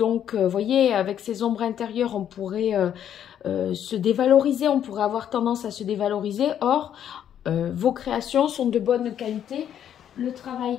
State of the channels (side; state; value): right; quieter; 9.8 dB